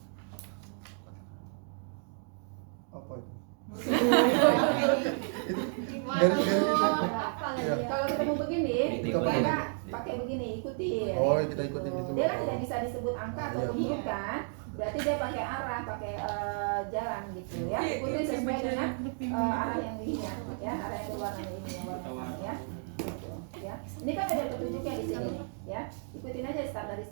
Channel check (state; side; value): silent; left; 56 dB below the other